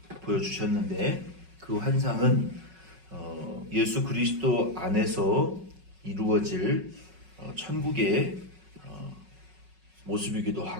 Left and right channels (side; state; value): left; late; 5.4 ms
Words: 그 환상은 예수 그리스도 안에서 이루어질 천국의 모습이기도